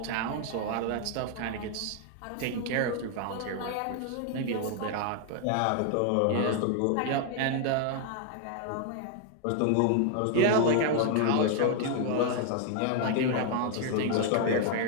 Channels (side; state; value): both; different; correlation 0.00